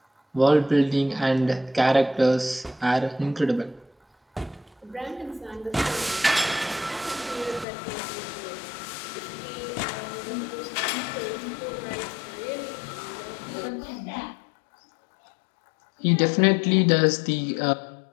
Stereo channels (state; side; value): drops out; right; at 7.7 s